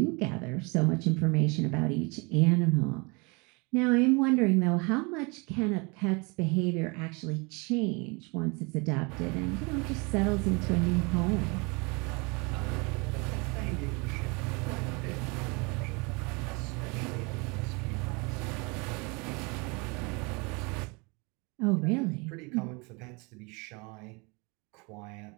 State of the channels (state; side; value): quieter; left; 29.4 dB